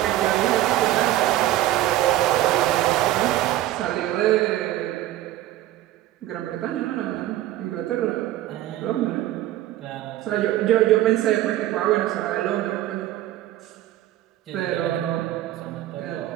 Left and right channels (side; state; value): left; quieter; 14.2 dB